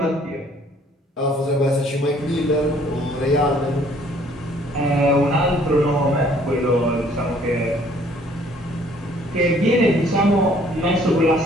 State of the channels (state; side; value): normal; both; correlation 0.59